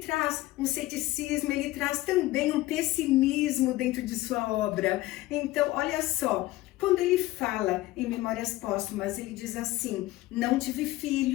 um ceticismo, ele traz também um pessimismo dentro de sua obra. Então, olha só, quando ele fala em Memórias Póstumas, ele diz assim: não tive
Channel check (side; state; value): right; quieter; 17.5 dB